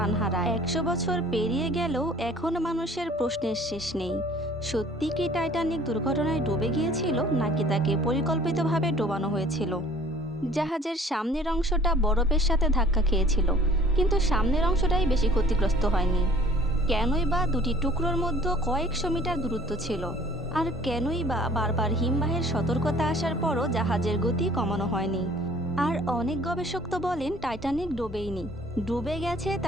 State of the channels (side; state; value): both; normal; correlation 0.52